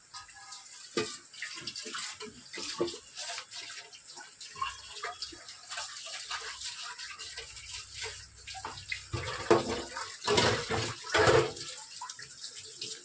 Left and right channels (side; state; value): both; identical; correlation 1.00